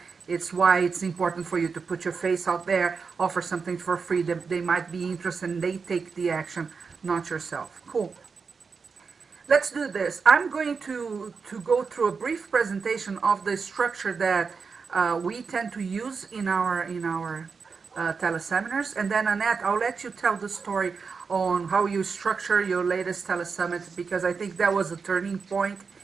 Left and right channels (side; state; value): left; quieter; 5.2 dB